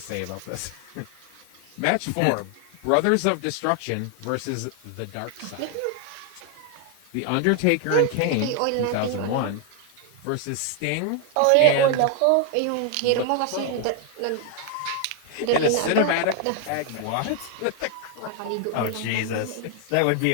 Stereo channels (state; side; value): different; both; correlation 0.00